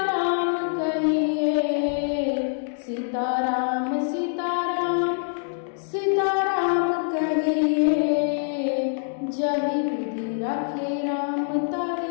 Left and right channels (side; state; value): right; silent; 62 dB below the other